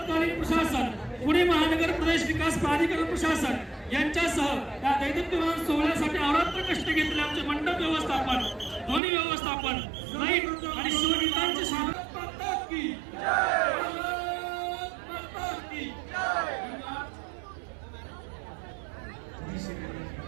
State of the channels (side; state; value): left; drops out; at 9.0 s